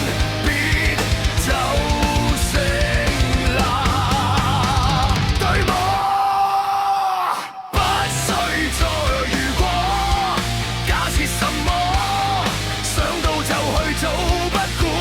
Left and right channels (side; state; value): both; identical; correlation 1.00